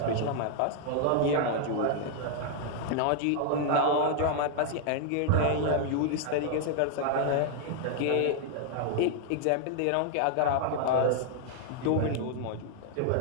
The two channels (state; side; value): different; both; correlation 0.00